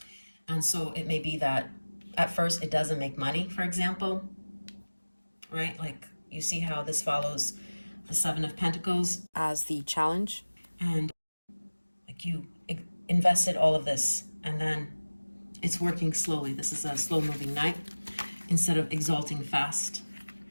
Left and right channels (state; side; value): inverted; both; correlation -1.00